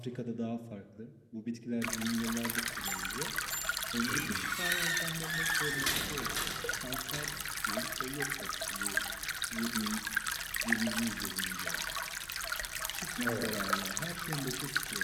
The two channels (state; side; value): identical; both; correlation 1.00